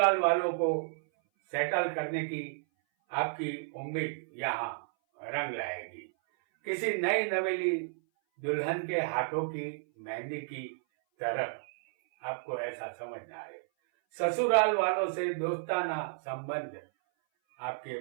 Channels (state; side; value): silent; left; 56 dB below the other